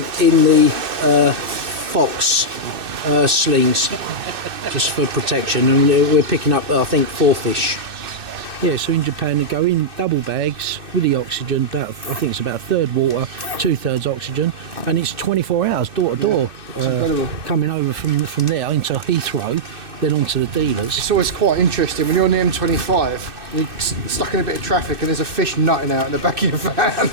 in the fox slings, just for protection. And we're picking up, I think, 4 fish. Yeah, so in Japan they go in double bags with the oxygen, I think it's about a third water, 2/3 oxygen, and it's 24 hours door to door, coming over from there into Heathrow, then onto the dealers. It's always quite interesting when you're on the M25, you're stuck in a bit of traffic and there's a fish nutting out in the back of your van.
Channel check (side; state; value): left; late; 2.6 ms